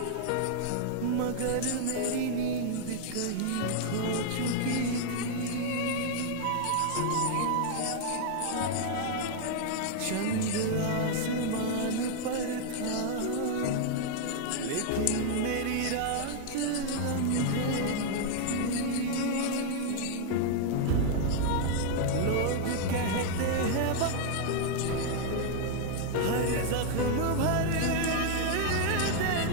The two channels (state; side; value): different; both; correlation 0.00